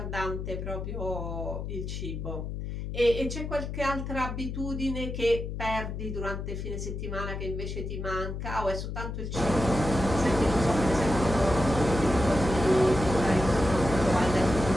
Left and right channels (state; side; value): noise; left; hum, 5 dB below the sound